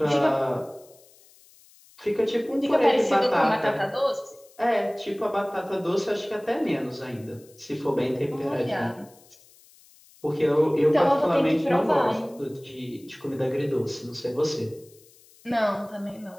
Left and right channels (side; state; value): left; noise; hiss, 27 dB below the sound